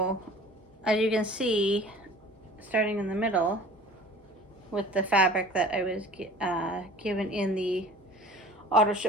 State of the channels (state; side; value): normal; both; correlation 0.44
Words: as you can see, starting in the middle with the fabric that I was given in the auto